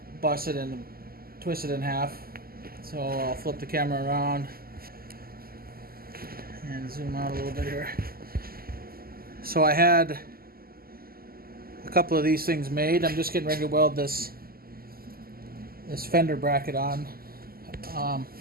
busted and twisted in half. So I'll flip the camera around and zoom out a little bit here. So I had a couple of these things made. I'm just getting ready to weld this fender bracket on.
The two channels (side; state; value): left; late; 0.43 ms